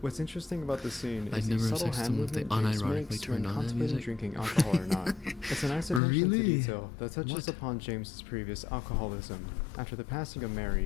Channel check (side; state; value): right; drops out; at 6.0 s